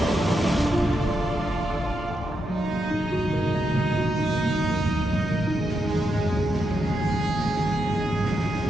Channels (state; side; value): normal; both; correlation 0.83